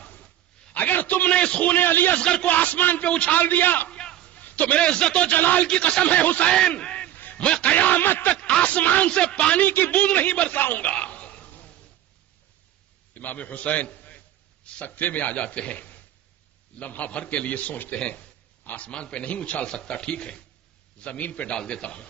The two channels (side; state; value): left; quieter; 12.4 dB